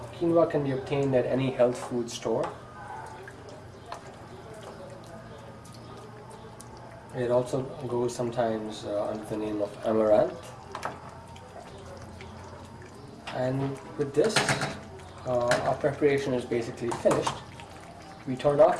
Quinoa can be obtained at any health food store. It also goes sometimes under the name of amaranth. And with this, our preparation is basically finished. We turn off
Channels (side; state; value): both; identical; correlation 1.00